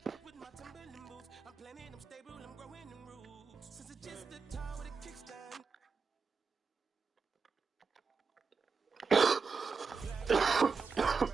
With my Timberland boots, I'm planning, I'm stable, I'm growing in roots. Since it's just a time with a kickstand.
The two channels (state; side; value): quieter; left; 5.1 dB